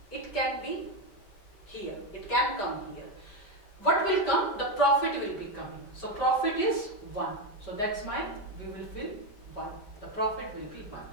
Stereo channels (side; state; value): right; late; 5.1 ms